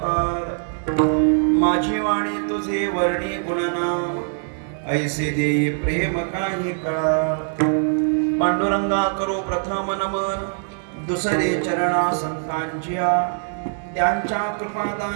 माझी वाणी तुझे वर्णी गुणनाम ऐसे देई प्रेम काही कळा पांडुरंगा करो प्रथम नमन दुसरे चरणा संतांच्या त्यांच्या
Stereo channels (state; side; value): silent; left; digital silence